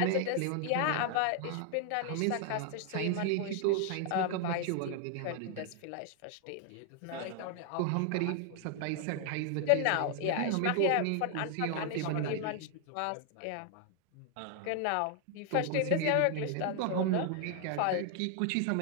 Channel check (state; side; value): different; both; correlation 0.00